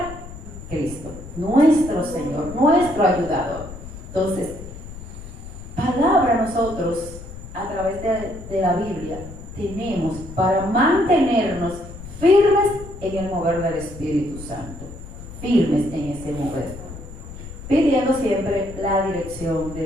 Cristo, nuestro Señor, nuestro ayudador. Entonces, palabra nosotros a través de la Biblia tenemos para mantenernos firmes en el mover del Espíritu Santo, firmes en ese mover, pidiendo siempre la dirección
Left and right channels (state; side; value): noise; left; rumble, 13 dB below the sound